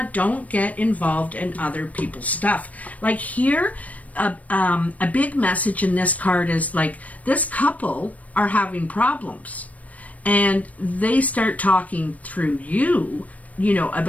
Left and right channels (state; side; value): late; right; 0.070 ms